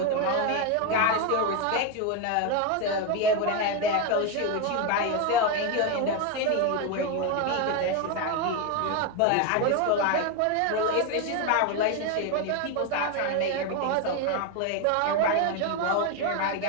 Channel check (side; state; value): both; different; correlation 0.02